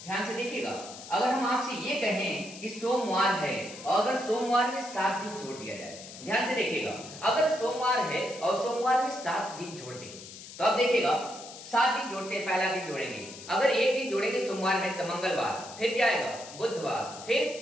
ध्यान से देखिएगा, अगर हम आपसे ये कहें कि सोमवार है और अगर सोमवार में 7 दिन जोड़ दिया जाए, ध्यान से देखिएगा, अगर सोमवार है और सोमवार में 7 दिन जोड़ दें तो अब देखिएगा 7 दिन जोड़ते हैं, पहला दिन जोड़ेंगे, अगर एक दिन जोड़ेंगे सोमवार में तो मंगलवार, फिर क्या आएगा, बुधवार,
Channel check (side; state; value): left; noise; hiss, 14 dB below the sound